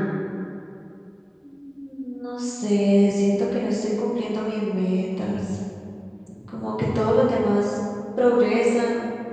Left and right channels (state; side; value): identical; both; correlation 1.00